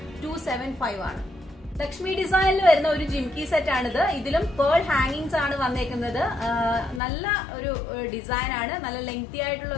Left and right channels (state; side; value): drops out; right; at 7.0 s